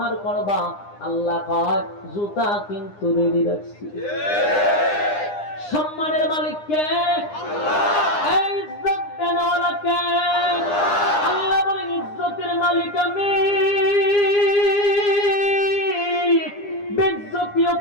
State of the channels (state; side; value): late; right; 9.8 ms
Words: করবা, আল্লাহ কয় জুতা কিন্তু রেডি রাখছি। সম্মানের মালিক কে? আল্লাহ। ইজ্জত দেওয়ালা কে? আল্লাহ বলেন ইজ্জতের মালিক আমি, বেইজ্জতিও